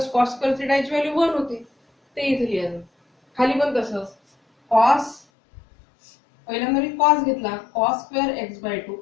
cos square theta ची व्हॅल्यू 1 होती ते इथे लिहायचं खाली पण तसंच cos पहिल्यांदा मी cos घेतला cos स्क्वेअर x बाय 2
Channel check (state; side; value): drops out; right; at 5.2 s